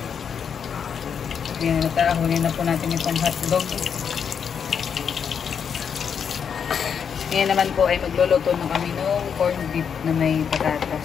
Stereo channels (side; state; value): right; quieter; 7.2 dB